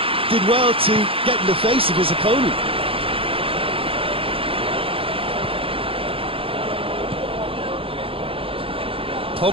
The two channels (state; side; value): late; left; 0.27 ms